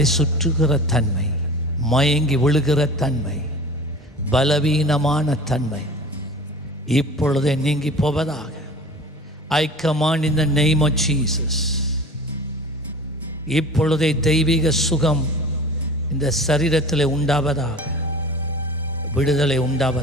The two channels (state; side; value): normal; both; correlation 0.39